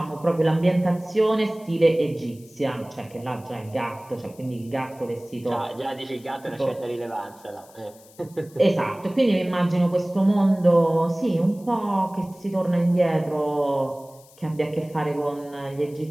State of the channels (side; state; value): left; noise; hiss, 25 dB below the sound